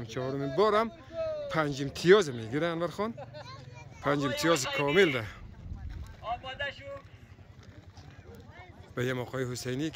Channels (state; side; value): identical; both; correlation 1.00